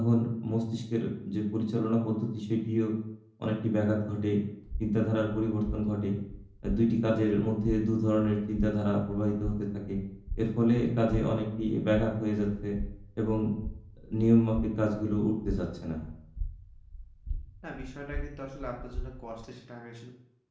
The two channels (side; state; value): both; identical; correlation 1.00